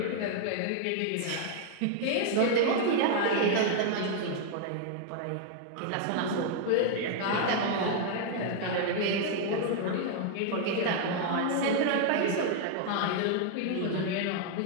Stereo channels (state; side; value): different; both; correlation 0.00